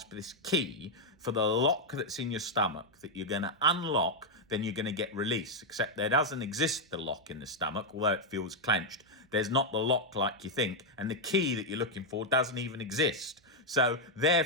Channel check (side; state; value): both; normal; correlation 0.00